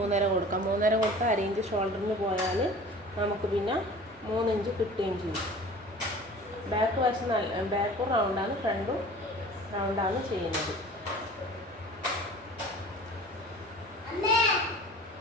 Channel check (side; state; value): both; normal; correlation 0.42